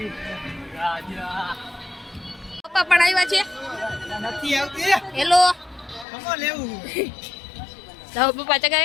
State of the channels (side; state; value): right; drops out; at 6.1 s